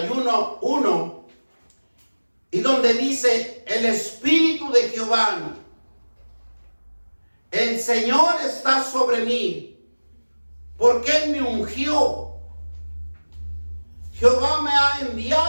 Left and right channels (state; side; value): inverted; both; correlation -1.00